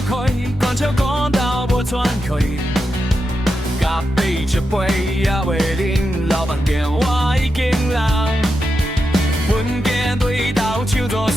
开，关笑讲到无喘气。咖啡一杯也未啉，老板电话已经人。阮家对头唱大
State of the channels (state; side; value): normal; both; correlation 0.88